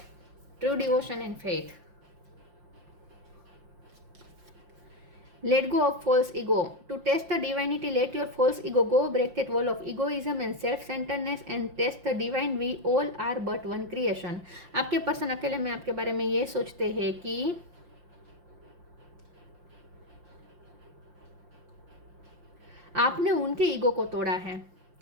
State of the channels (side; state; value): left; late; 5.7 ms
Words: true devotion and faith. Let go of false ego. To test the divinity, let your false ego go. Break that wall of egoism and self-centeredness and test the divine. We all are but one creation. आपके person अकेले में आपके बारे में ये सोचते हैं कि आपने उनके ईगो को तोड़ा है।